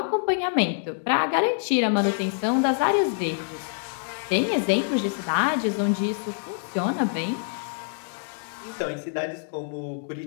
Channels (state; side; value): silent; right; digital silence